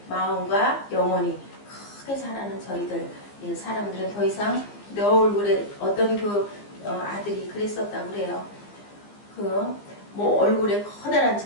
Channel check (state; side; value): late; right; 15 ms